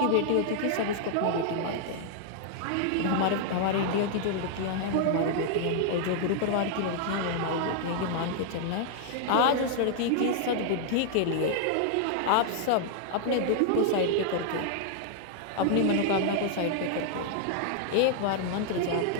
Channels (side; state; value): both; different; correlation -0.01